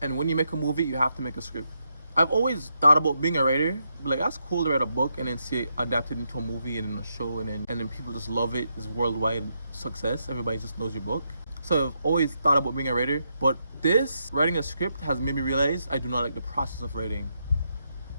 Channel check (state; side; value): inverted; both; correlation -0.82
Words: And when you make a movie, you have to make a script. I've always thought about being a writer. Like, that's cool to write a book and then see it adapted into a movie and in a show, and then people just love it. It's worldwide success. Everybody just knows your book. So I've always thought about being a writer. But this, writing a script, has made me realize I do not like the process of writing,